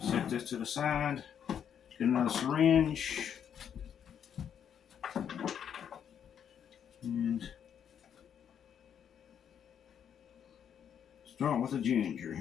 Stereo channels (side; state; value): right; quieter; 8.5 dB